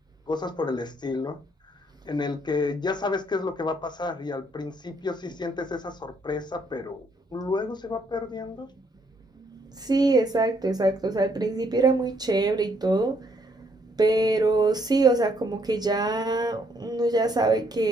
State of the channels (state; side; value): normal; both; correlation 0.70